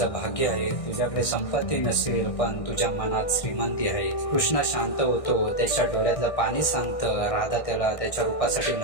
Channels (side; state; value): right; late; 1.6 ms